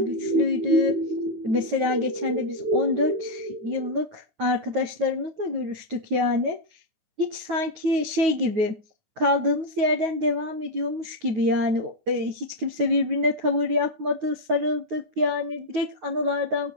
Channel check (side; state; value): left; late; 9.3 ms